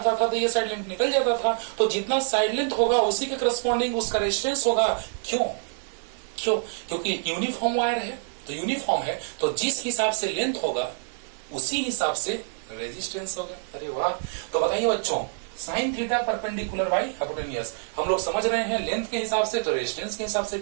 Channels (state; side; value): silent; left; digital silence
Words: था तो ये साइड लेंथ निकल जाता था, तो जितना साइड लेंथ होगा उसी के करस्पॉन्डिंग उसका रेजिस्टेंस होगा। क्यों? क्योंकि यूनिफॉर्म वायर है, तो यूनिफॉर्म है तो जिस हिसाब से लेंथ होगा उसी हिसाब से रेजिस्टेंस होगा। अरे वाह! तो बताइए बच्चों, sign theta perpendicular by hypotenuse हम लोग समझ रहे हैं लेंथ के हिसाब से तो रेजिस्टेंस के हिसाब से,